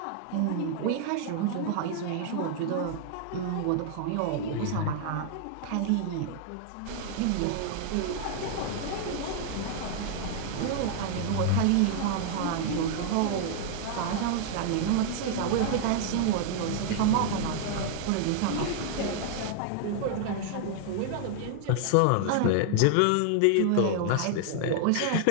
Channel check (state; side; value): different; both; correlation 0.00